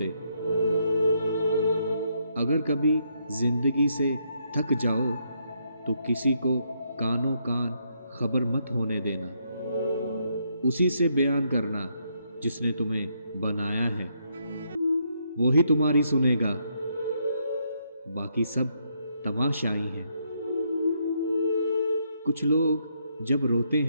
अगर कभी जिंदगी से थक जाओ तो किसी को कानों कान खबर मत होने देना। उसी से बयान करना जिसने तुम्हें बनाया है, वो ही तुम्हारी सुनेगा, बाकी सब तमाशाई हैं। कुछ लोग जब रोते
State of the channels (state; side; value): inverted; both; correlation -0.75